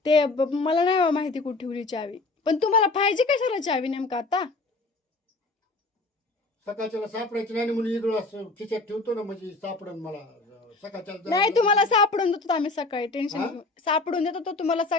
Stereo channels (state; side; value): quieter; right; 3.4 dB